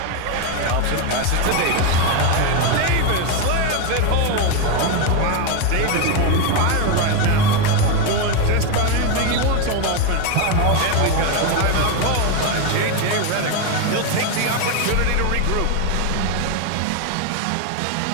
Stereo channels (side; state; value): both; different; correlation 0.02